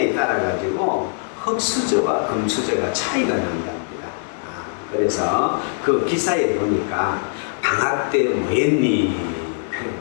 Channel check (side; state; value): right; silent; digital silence